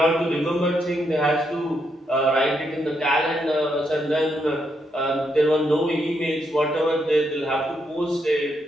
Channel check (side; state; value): both; normal; correlation 0.79